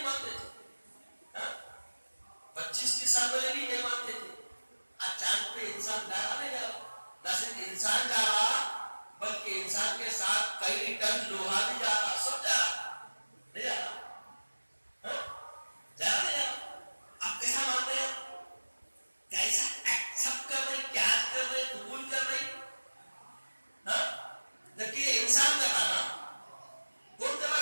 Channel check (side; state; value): both; inverted; correlation -1.00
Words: مانتے تھے، 25 سال پہلے بھی نہیں مانتے تھے۔ آج چاند پہ انسان جا رہا نہیں جا رہا، نہ صرف انسان جا رہا بلکہ انسان کے ساتھ کئی ٹن لوہا بھی جا رہا، سب جا رہا، نہیں جا رہا، جا رہا نہیں جا رہا۔ آپ کیسا مان رہے ہیں؟ کیسا ایکسپٹ کر رہے، کیا کر رہے، قبول کر رہے؟ جبکہ یہ انسان کر رہا نا، کون کر رہا؟